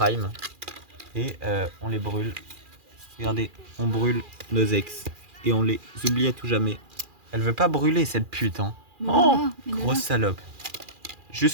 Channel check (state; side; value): late; left; 2.4 ms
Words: Et on les brûle. Regardez, on brûle nos ex. Et on les oublie à tout jamais. Elle veut pas brûler cette pute, hein. Mais Oh, voilà, mais grosse voilà. salope.